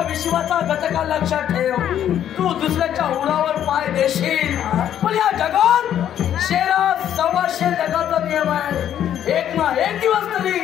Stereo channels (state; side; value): quieter; right; 10.4 dB